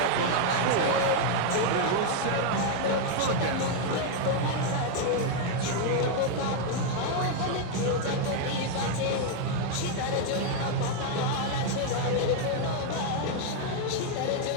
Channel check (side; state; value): both; different; correlation 0.00